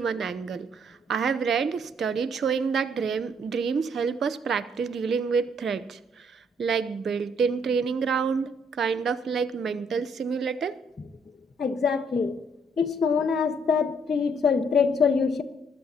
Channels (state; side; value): normal; both; correlation 0.67